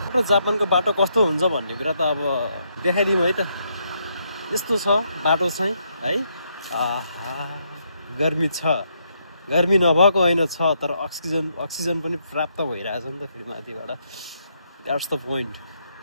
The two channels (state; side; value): inverted; both; correlation -0.77